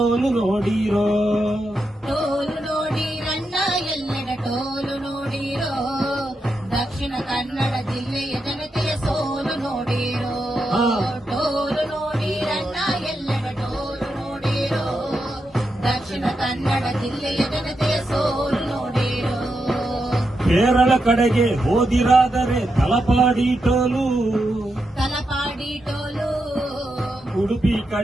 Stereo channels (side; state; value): both; normal; correlation 0.85